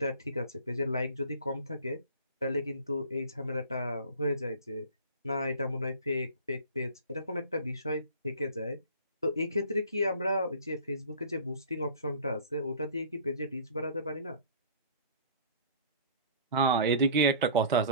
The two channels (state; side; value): inverted; both; correlation -0.43